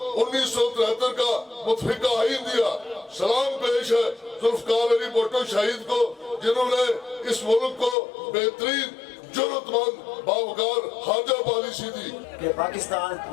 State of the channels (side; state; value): right; drops out; at 8.0 s